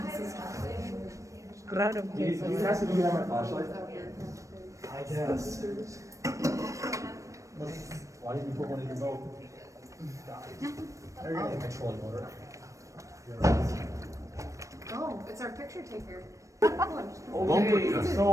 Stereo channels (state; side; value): late; left; 0.15 ms